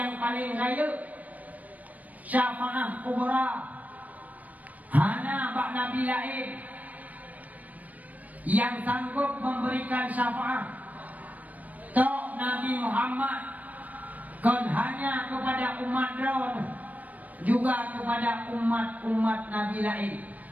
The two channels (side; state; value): left; late; 0.075 ms